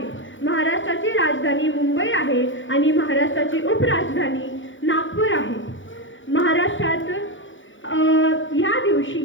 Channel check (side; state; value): right; late; 0.56 ms